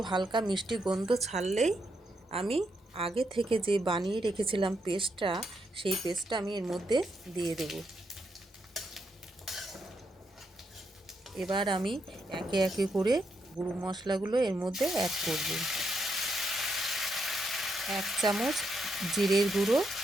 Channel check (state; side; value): normal; both; correlation 0.80